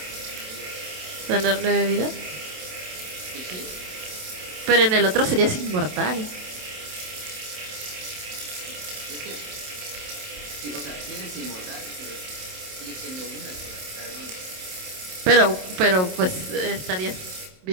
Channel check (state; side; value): late; left; 27 ms